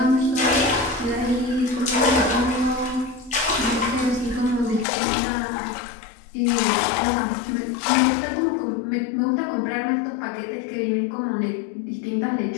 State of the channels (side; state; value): right; drops out; at 4.9 s